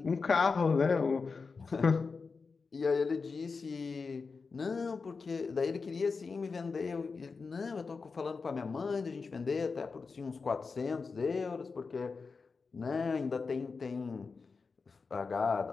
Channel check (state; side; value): quieter; right; 4.7 dB